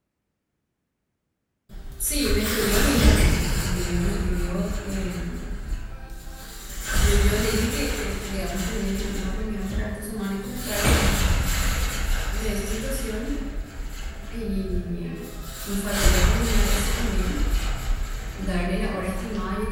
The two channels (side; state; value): both; identical; correlation 1.00